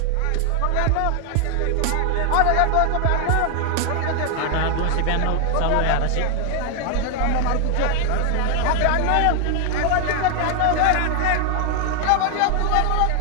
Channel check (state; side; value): different; both; correlation 0.00